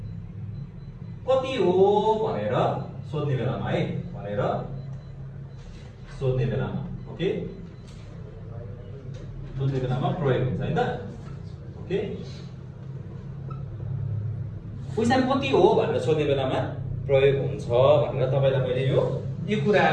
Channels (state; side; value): identical; both; correlation 1.00